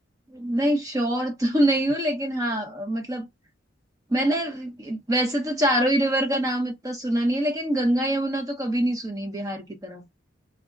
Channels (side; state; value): both; normal; correlation 0.69